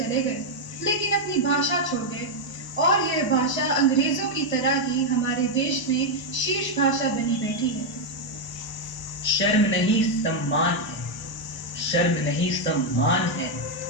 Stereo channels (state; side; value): late; right; 1.0 ms